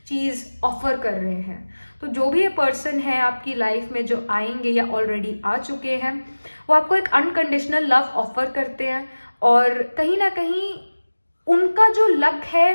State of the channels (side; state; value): both; inverted; correlation -1.00